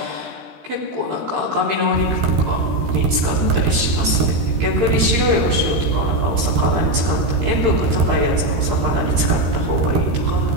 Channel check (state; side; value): late; left; 13 ms